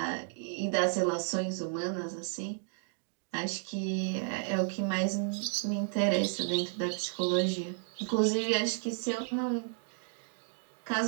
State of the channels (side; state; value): left; silent; 56 dB below the other